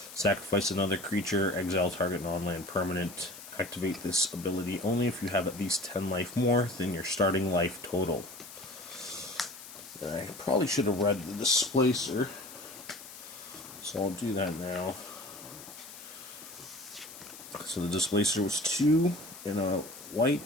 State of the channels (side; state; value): left; noise; hiss, 15 dB below the sound